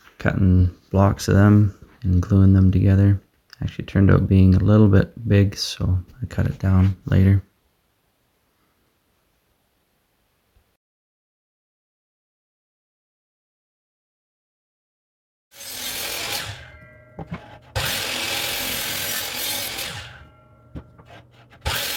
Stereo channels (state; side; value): identical; both; correlation 1.00